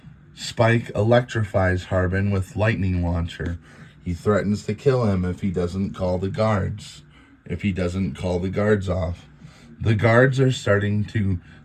Spike electrifies Harbin with lightning launcher. He threatens to kill him if he doesn't call the guards off. The guards are starting to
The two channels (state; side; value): identical; both; correlation 1.00